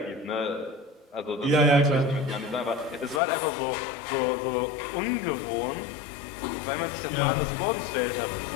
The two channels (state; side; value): drops out; right; at 3.2 s